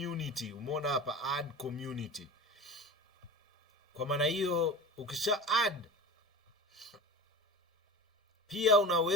Umeona hapa add community. Kwa maana hiyo ukisha add pia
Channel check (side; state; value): both; normal; correlation 0.32